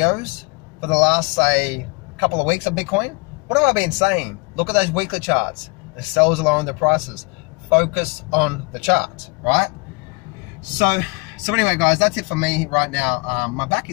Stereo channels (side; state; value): right; quieter; 28.4 dB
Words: for the last, say, couple of weeks of Bitcoin, what have I been saying? Look at those weekly charts. The sellers are lowering their prices. Focus on the charts, right? So So anyway, guys, that's it for me right now. My back